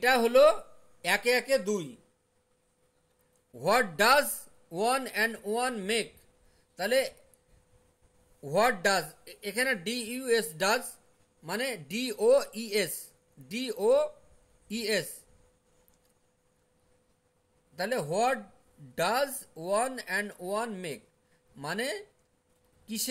হলো একে একে দুই। What does one and one make, তাহলে হোয়াট ডাজ, এখানে ডি ইউ এস ডাজ মানে ডি ও ই এস, ডি ও ই এস, তাহলে what does one and one make মানে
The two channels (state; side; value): identical; both; correlation 1.00